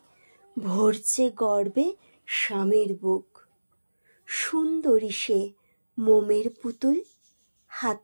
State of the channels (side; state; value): both; inverted; correlation -1.00